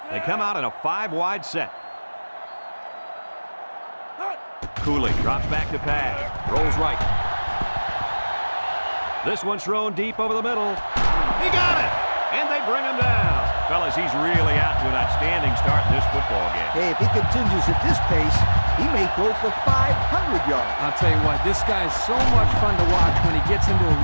They come out in a 5-wide set. Cooley drops back to pass. Rolls right. This one's thrown deep over the middle. He got it! And they bring him down. Fellas, he's really out to an outstanding start in this football game. Hey, if he continues at this pace, he may throw for 500 yards. I'll tell you what, this guy's so much fun to watch when he gets into a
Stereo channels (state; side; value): inverted; both; correlation -1.00